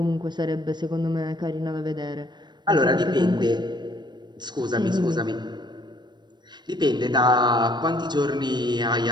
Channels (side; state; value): left; late; 0.21 ms